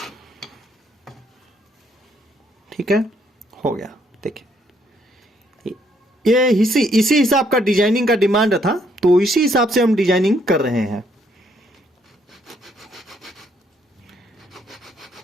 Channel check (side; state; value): both; normal; correlation 0.70